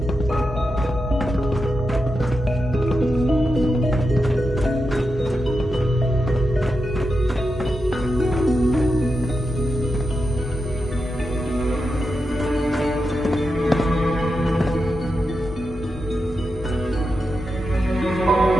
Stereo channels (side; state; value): both; normal; correlation 0.88